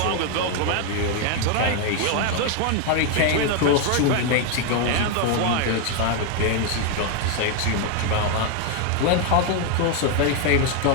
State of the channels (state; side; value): different; both; correlation 0.01